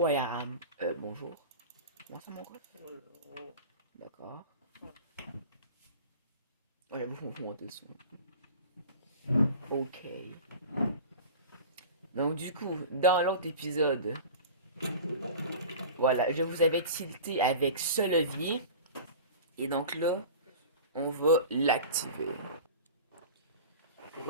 where I am. Bonjour. Comment ça mon ref? D'accord. Oh, j'avoue, faut monter le son. Ok. Donc du coup, dans l'autre épisode, voilà, je vous avais tilté avec ce levier. Et donc là, on va l'activer.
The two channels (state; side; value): inverted; both; correlation -0.37